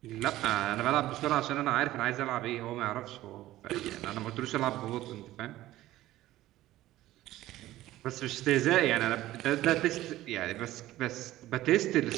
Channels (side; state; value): left; quieter; 15.4 dB